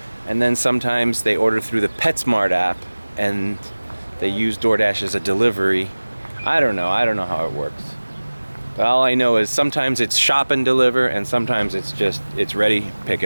and then sometimes they order through the Petsmart app and they use DoorDash as a delivery. I don't know how it works. But all I know is sometimes it's shop and deliver, and sometimes it's ready, pick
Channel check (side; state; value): both; inverted; correlation -1.00